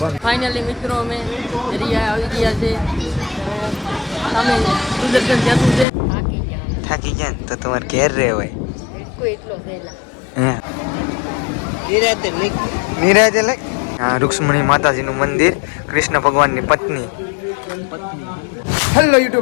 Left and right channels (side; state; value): right; drops out; at 5.9 s